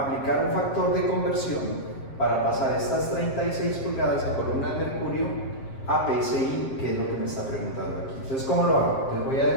un factor de conversión para pasar estas 36 pulgadas de columna de mercurio a PSI, que es lo que me está preguntando aquí. Entonces, ¿cómo lo hago? Les voy a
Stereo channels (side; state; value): right; late; 7.5 ms